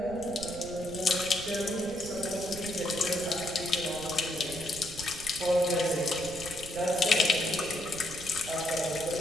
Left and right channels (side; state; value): right; noise; rumble, 14 dB below the sound